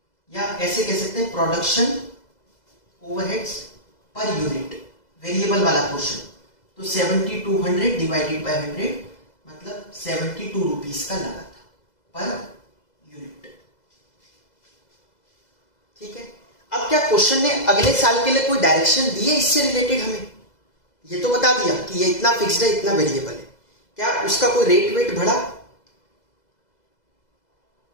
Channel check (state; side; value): late; right; 2.0 ms